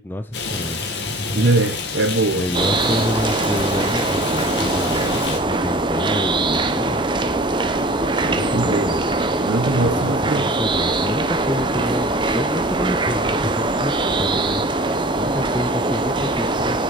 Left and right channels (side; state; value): both; normal; correlation 0.42